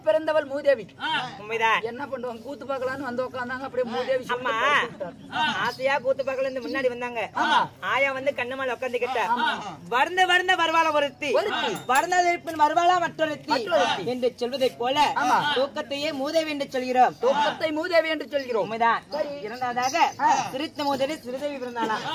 பிறந்தவள் மூதேவி. உண்மைதான். என்ன பண்ணுவாங்க, கூத்து பார்க்கலான்னு வந்து உட்கார்ந்தாங்க. அப்படியே மூதேவி அம்மா ஆசையா கூத்து பார்க்கல முன்னாடி வந்தாங்க. ஆயா வந்து கண்ணமால உட்காந்துக்கிட்ட வர்ந்த வர்ந்த வருவாளா ஒருத்தி, வர்ணதற்பின் வருவாளா மற்றொருத்தி என்று சொல்வதை போல தூக்கத்தையே மூதேவி என்று சொல்கிறோம். தூக்கத்தை மூதேவி என்று சொல்கிறோம். உண்மைதான். இரண்டாவதாக சிரித்த மூதேவி சிறுதேவி பிறந்தாளா?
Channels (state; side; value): identical; both; correlation 1.00